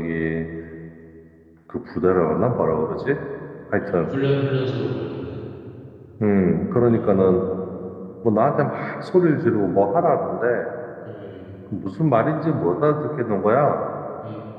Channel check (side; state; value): both; identical; correlation 1.00